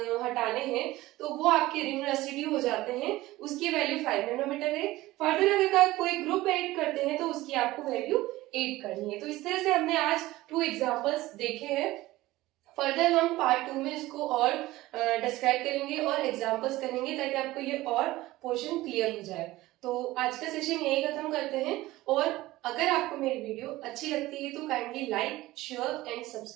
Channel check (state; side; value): quieter; left; 17.8 dB